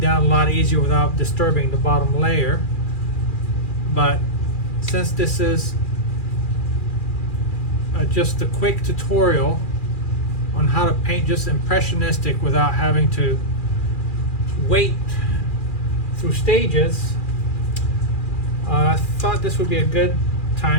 a lot easier without disturbing the bottom layer. But since this is just a quick tutorial on how to paint just impressionistic without having to wait through stages, I thought this would be a good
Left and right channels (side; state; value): right; late; 2.4 ms